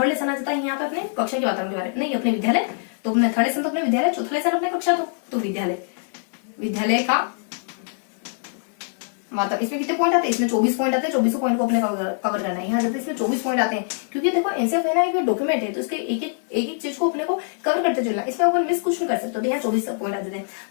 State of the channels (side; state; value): right; silent; 63 dB below the other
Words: लेसन आ जाता है यहाँ पे अपने कक्षा के वातावरण के बारे में, नहीं अपने विद्यालय। तो अपने थर्ड लेसन तो अपने विद्यालय, चौथा लेसन अपने कक्षा, तो विद्यालय का मतलब इसमें कितने पॉइंट आते हैं, इसमें 24 पॉइंट आते हैं। 24 पॉइंट को अपने कवर करना है। यहाँ जाते इसमें 24 पॉइंट आते हैं, क्योंकि देखो एनसीएफ है ना एक डॉक्यूमेंट है, तो इसके एक चीज को अपने को कवर करते चलना, इसमें अपन मिस कुछ नहीं कर सकते। तो यहाँ 24 पॉइंट आ जाते हैं।